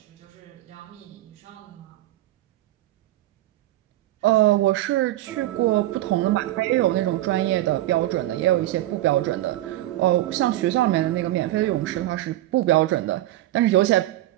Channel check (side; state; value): left; quieter; 15.4 dB